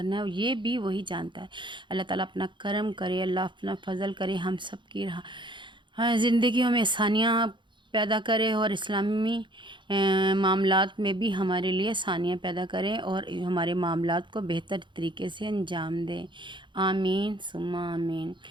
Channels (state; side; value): late; left; 0.23 ms